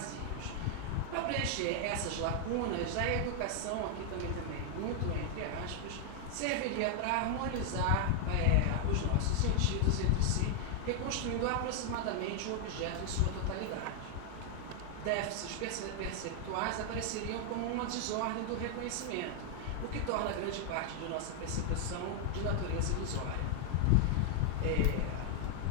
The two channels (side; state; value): both; different; correlation 0.00